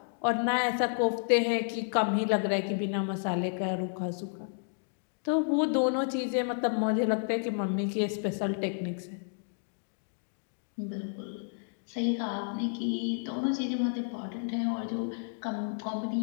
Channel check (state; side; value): silent; right; digital silence